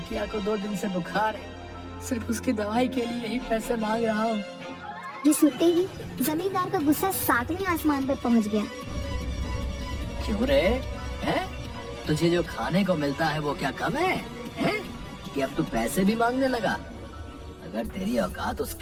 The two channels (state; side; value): identical; both; correlation 1.00